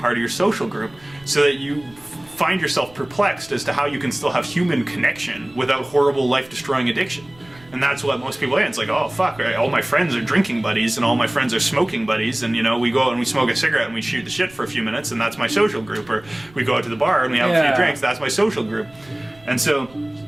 of your social group, so that you find yourself perplexed as to how you can still have human connection without horrible life-destroying addiction. And that's what most people are. It's like, oh, fuck, right? All my friends are drinking buddies and all my friends are smoking buddies. And, you know, we go out and we smoke a cigarette and we shoot the shit for a few minutes and that's my social group. Or we go out to the bar and we have a few drinks, that's my social group. And so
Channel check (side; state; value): right; noise; rumble, 25 dB below the sound